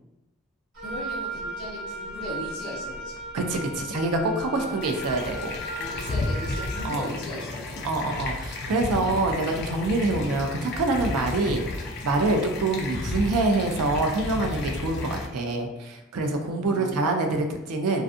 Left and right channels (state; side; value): normal; both; correlation 0.33